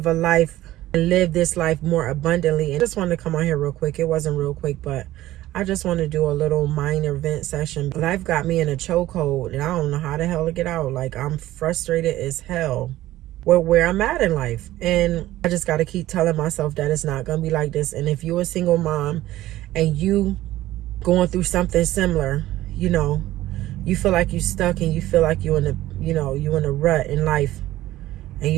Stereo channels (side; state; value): left; quieter; 15.4 dB